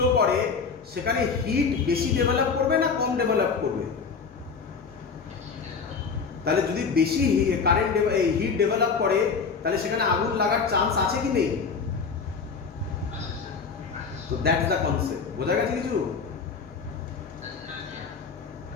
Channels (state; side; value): quieter; right; 5.4 dB